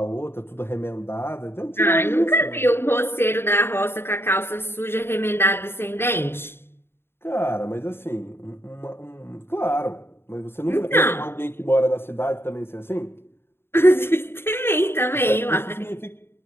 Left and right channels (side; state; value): right; late; 0.11 ms